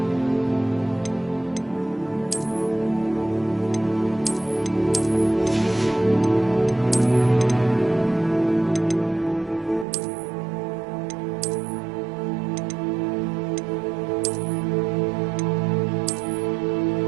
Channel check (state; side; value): drops out; left; at 9.9 s